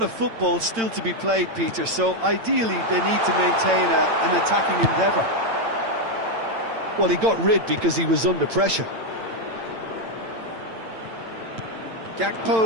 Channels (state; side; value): late; left; 8.9 ms